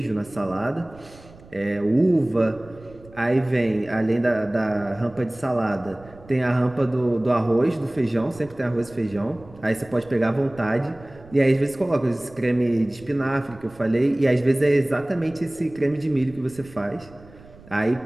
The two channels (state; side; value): noise; right; rumble, 22 dB below the sound